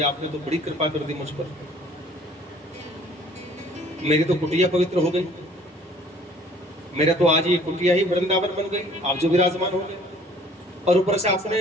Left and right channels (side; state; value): both; normal; correlation 0.54